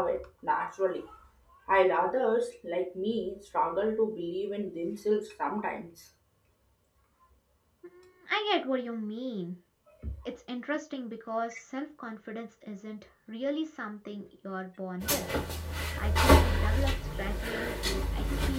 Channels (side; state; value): both; identical; correlation 1.00